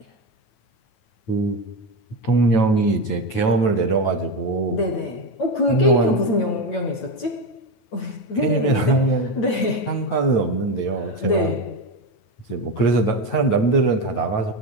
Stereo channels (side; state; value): right; late; 9.2 ms